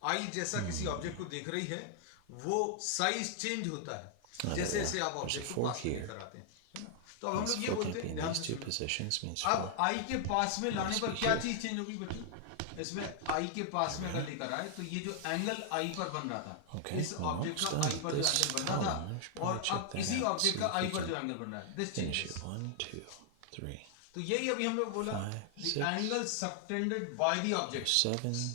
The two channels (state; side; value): different; both; correlation 0.00